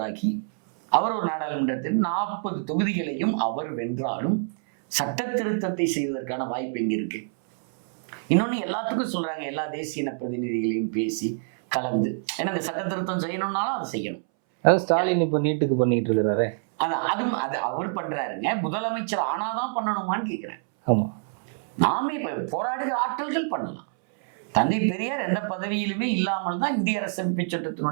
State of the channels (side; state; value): left; silent; 61 dB below the other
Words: அவர் ஒரு நாடாளுமன்றத்தில் 40 தொகுதிகளையும் அவர் வென்றாலும் சட்ட திருத்தத்தை செய்வதற்கான வாய்ப்பு எங்க இருக்கு? இன்னொன்னு எல்லாத்துக்கும் சொல்றாங்க, எல்லா தேசிய இன பிரதிநிதிகளையும் பேசி கலந்து, ஏன்னா இந்த சட்ட திருத்தம் செய்யணும்னாலும் அதை செய்யணும். அதாவது ஸ்டாலின் இப்ப நீட்டுக்கு பண்ணிட்டு இருக்கிறாரு. அதான் அது அவர் பண்றாருங்க. முதலமைச்சர் ஆனாதான் பண்ணணுமான்னு கேட்கிறேன். ஆமா, நாமே இப்ப போராடுகிற ஆட்கள் பண்ணலாம். தந்தை பெரியார் எந்த பதவியிலுமே இல்லாமல் தான் இந்திய அரசமைப்பு